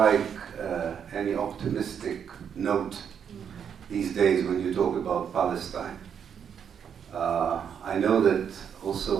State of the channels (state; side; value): quieter; left; 7.8 dB